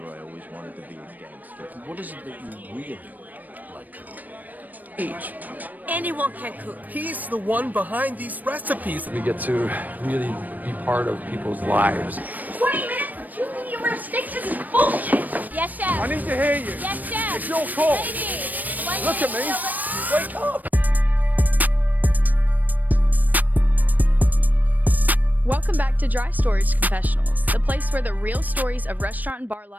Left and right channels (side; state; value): left; late; 0.084 ms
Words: I always wanted to be a gangster. What is it that you really like to Each. Anyone can cook. He's the one behind these recipes. We get to really be part of people's lives. 20 minutes for 2 medium rare steaks? This is bullshit. Yes, chef. I need to hear you. Yes, chef. It's your call. Lady. Look at me. Wake up. Welcome back to Dry Storage Confessionals, the place where the real stories of restaurant and bar